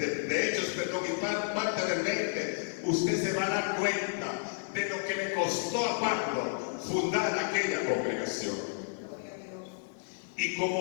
Hechos, y parte del 20, usted se va a dar cuenta de lo que le costó a Pablo fundar aquella congregación. Y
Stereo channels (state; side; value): silent; right; digital silence